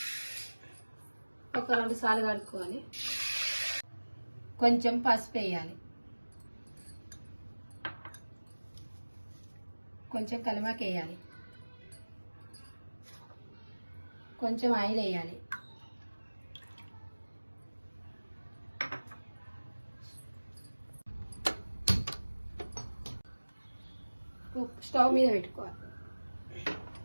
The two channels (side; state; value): both; inverted; correlation -1.00